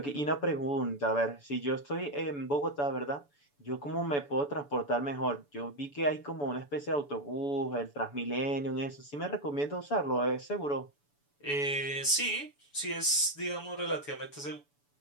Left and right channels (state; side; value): late; right; 7.0 ms